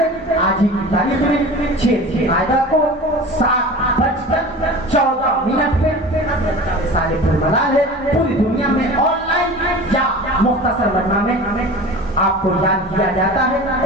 آج ہی کی تاریخ میں 6 آئدہ کو 7:14 پہ حضرت کا وصال پرملال ہے۔ پوری دنیا میں آن لائن یا مختصر مجمع میں آپ کو یاد کیا جاتا ہے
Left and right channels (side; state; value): both; normal; correlation 0.36